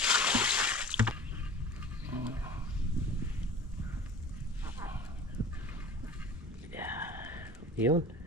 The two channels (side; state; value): both; normal; correlation 0.40